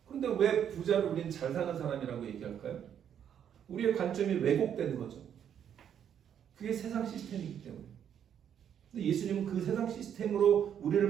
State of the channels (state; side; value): quieter; left; 9.0 dB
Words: 그런데 왜 부자를 우리는 잘 사는 사람이라고 얘기할까요? 우리의 관점이 왜곡된 거죠. 그게 세상 시스템이기 때문에. 근데 예수님은 그 세상 시스템으로 우리를